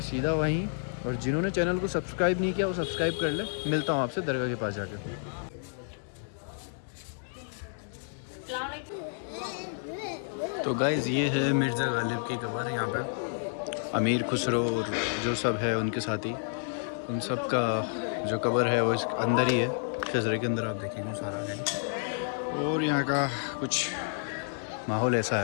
سیدھا وہیں، اور جنہوں نے چینل کو سبسکرائب نہیں کیا وہ سبسکرائب کر لیں۔ ملتا ہوں آپ سے درگاہ کے پاس جا کے۔ تو گائز یہ ہے مرزا غالب کی قبر، یہاں پہ امیر خسرو اور جو سب ہے ان کے ساتھی، ان سب کا جو قبر ہے وہ اس اندر ہی ہے، شجرے کے اندر آپ دیکھیں گے سارا دن۔ اور یہاں کا کچھ ماحول ایسا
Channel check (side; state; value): right; silent; digital silence